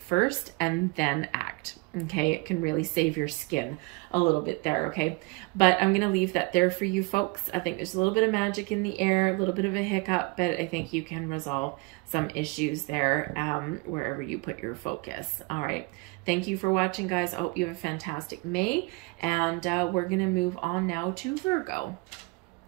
and then act. Okay, it can really save your skin a little bit there, okay? But I'm going to leave that there for you folks. I think there's a little bit of magic in the air, a little bit of a hiccup, but I think you can resolve some issues there wherever you put your focus. All right. Thank you for watching, guys. I hope you have a fantastic May, and we're going to move on now to Virgo.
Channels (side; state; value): left; quieter; 26.7 dB